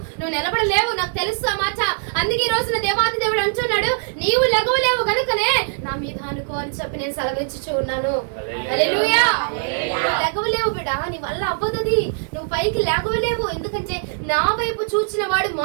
నువ్వు నిలబడలేవు, నాకు తెలుసు ఆ మాట. అందుకే ఈ రోజున దేవాది దేవుడు అంటున్నాడు, నీవు లెగవలేవు కనుకనే నా మీద అనుకో అని చెప్పి నేను సెలవిచ్చుచూ ఉన్నాను. హల్లెలూయా. లెగవలేవు బిడ్డ, నీ వల్ల అవ్వదు, నువ్వు పైకి లెగవలేవు. ఎందుకంటే నా వైపు చూచిన వాడు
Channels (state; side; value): silent; left; digital silence